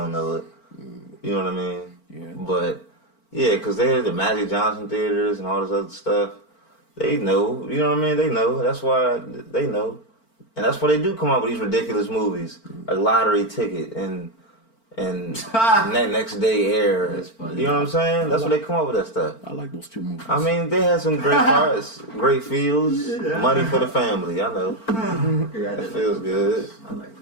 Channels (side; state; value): right; late; 4.4 ms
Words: know it. You know what I mean? Yeah. But, yeah, because they had the Magic Johnson theaters and all this other stuff. They know. You know what I mean? They know. That's why they know. And that's why they do come out with these ridiculous movies. A lottery ticket and next day air. That's funny. You know what I'm saying? That's why they come up with that stuff. I like those two movies. I mean, they had some great parts, great feels, money for the family. I know. That feels good. I like